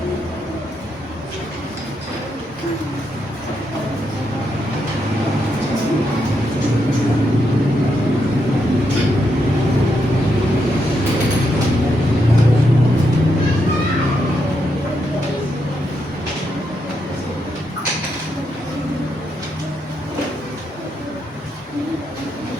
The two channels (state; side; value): normal; both; correlation 0.81